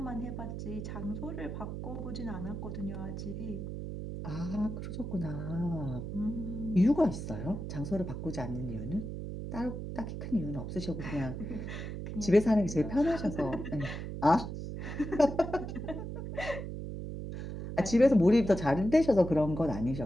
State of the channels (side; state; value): right; noise; hum, 6 dB below the sound